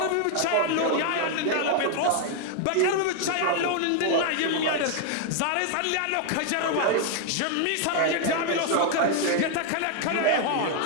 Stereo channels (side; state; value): both; different; correlation 0.00